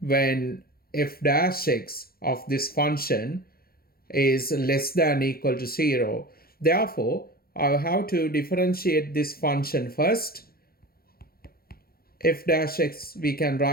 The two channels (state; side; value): late; right; 0.44 ms